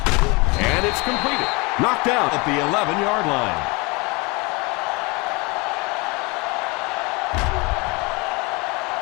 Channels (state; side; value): quieter; right; 27.2 dB